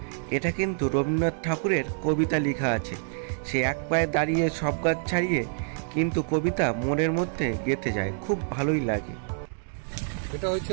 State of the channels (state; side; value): silent; left; digital silence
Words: এটা কিন্তু রবীন্দ্রনাথ ঠাকুরের কবিতা লেখা আছে। সে এক পায়ে দাঁড়িয়ে সব গাছ ছাড়িয়ে কিন্তু কবিতা মনের মধ্যে গেঁথে যায়, খুব ভালোই লাগে। এটা হচ্ছে